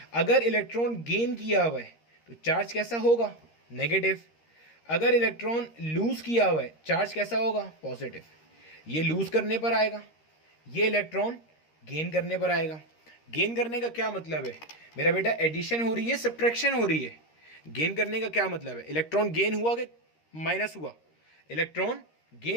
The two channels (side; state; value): right; late; 13 ms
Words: अगर इलेक्ट्रॉन गेन किया हुआ है तो चार्ज कैसा होगा, नेगेटिव। अगर इलेक्ट्रॉन लूज किया हुआ है, चार्ज कैसा होगा, पॉजिटिव। ये लूज करने पर आएगा, ये इलेक्ट्रॉन गेन करने पर आएगा। गेन करने का क्या मतलब है मेरा बेटा, एडिशन हो रही है, सब्ट्रैक्शन हो रही है। गेन करने का क्या मतलब है, इलेक्ट्रॉन गेन हुआ कि माइनस हुआ, इलेक्ट्रॉन